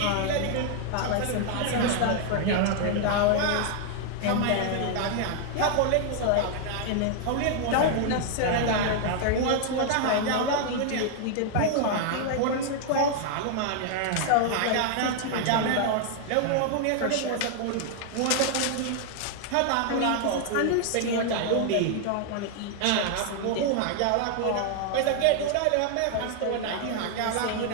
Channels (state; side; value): different; both; correlation 0.00